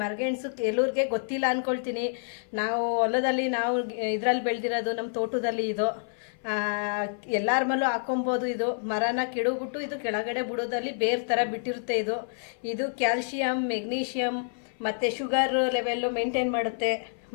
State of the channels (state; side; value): silent; right; 55 dB below the other